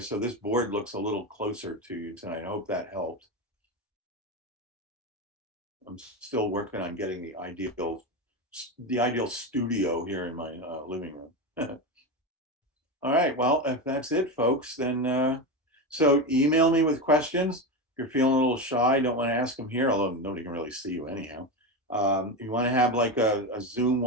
this board looks a little closer to you tonight. I hope that helped. I'm still working on getting the ideal studio here in my living room. All right, well, if that's it, folks, then so email me with questions. If you're feeling a little shy, don't want to ask them here, although nobody can really see you anyhow. If you want to have like a Zoom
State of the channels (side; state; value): both; normal; correlation 0.17